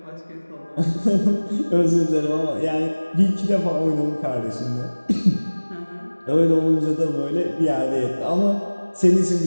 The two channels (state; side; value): inverted; both; correlation -1.00